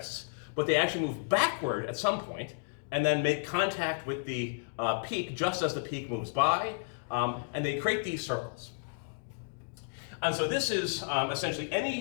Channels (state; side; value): silent; right; digital silence